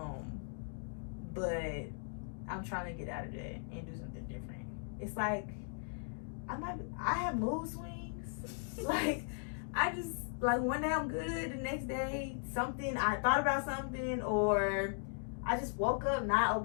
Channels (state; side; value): silent; right; digital silence